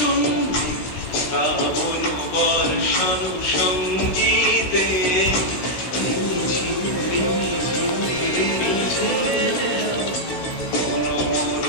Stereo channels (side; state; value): right; late; 16 ms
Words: শ্রাবণ বর্ষণ সঙ্গীতে